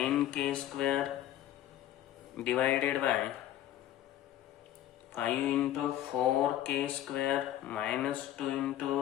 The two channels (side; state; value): right; quieter; 12.5 dB